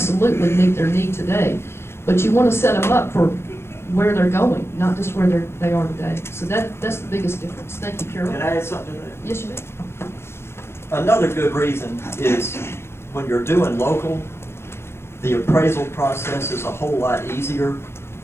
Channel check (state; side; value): late; right; 0.12 ms